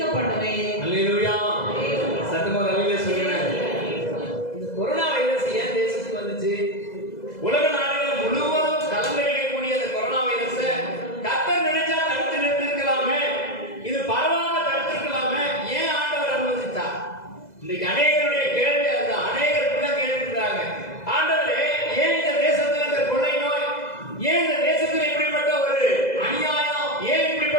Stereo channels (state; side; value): late; right; 2.0 ms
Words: பண்ணுவேன். அல்லேலூயா. சத்தமா அல்லேலூயா சொல்லுங்க. இந்த கொரோனா வைரஸ் ஏன் தேசத்துக்கு வந்துச்சு? உலக நாடுகள் முழுவதும் கலங்கடிக்கக்கூடிய அந்த கொரோனா வைரஸை கர்த்தர் நினைச்சா தடுத்து நிறுத்திருக்கலாமே, இது பரவாம தடுத்திருக்கலாமே, ஏன் ஆண்டவர் அனுமதித்தார்? இன்னைக்கு அநேகருடைய கேள்வி அது. அநேகர் இப்படிதான் கேட்டுக்கிறாங்க, ஆண்டவரே ஏன் இந்த தேசத்துல இந்த கொள்ளை நோய், ஏன் இந்த தேசத்துல இப்படிப்பட்ட ஒரு அநியாயம், ஏன்